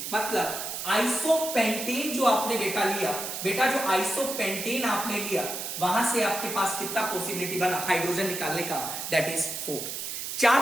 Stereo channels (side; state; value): right; noise; hiss, 5 dB below the sound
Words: मतलब आइसोपेंटेन जो आपने बेटा लिया, बेटा जो आइसोपेंटेन आपने लिया, वहां से आपके पास कितना पॉसिबिलिटी बना हाइड्रोजन निकालने का, दैट इज 4। 4